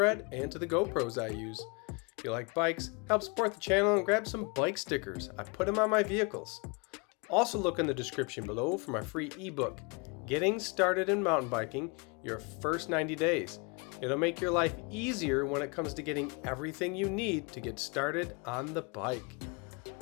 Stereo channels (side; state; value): right; quieter; 31.5 dB